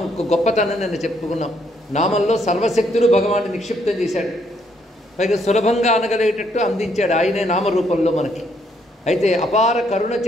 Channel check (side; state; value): both; normal; correlation 0.71